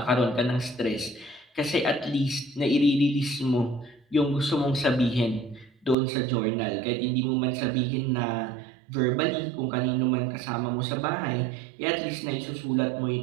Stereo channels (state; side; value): drops out; left; at 6.0 s